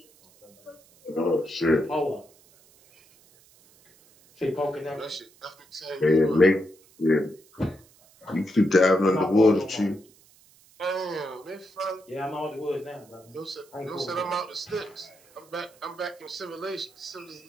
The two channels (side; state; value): right; noise; hiss, 28 dB below the sound